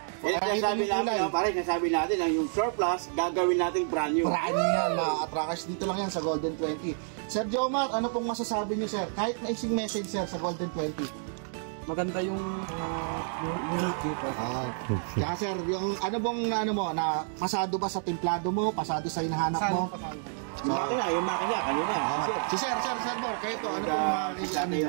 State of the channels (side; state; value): left; silent; 58 dB below the other